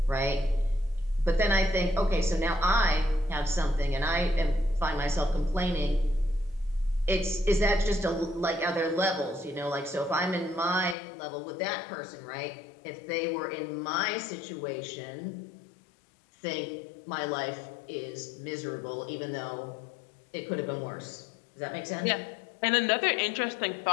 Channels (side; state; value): right; drops out; at 11.0 s